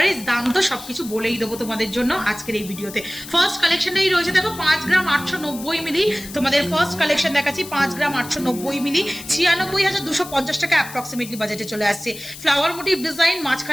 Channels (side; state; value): left; noise; hiss, 14 dB below the sound